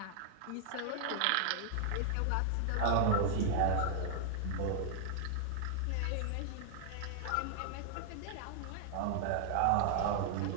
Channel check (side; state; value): both; different; correlation -0.01